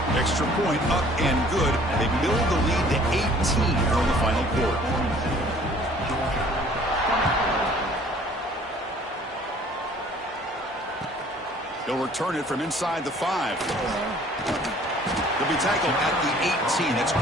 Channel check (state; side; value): normal; both; correlation 0.54